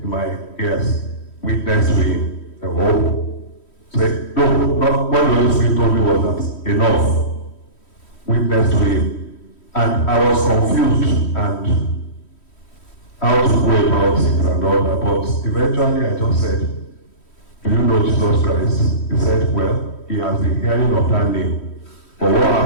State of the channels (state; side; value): late; right; 3.1 ms